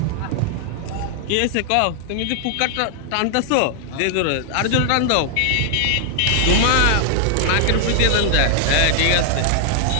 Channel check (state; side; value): different; both; correlation 0.00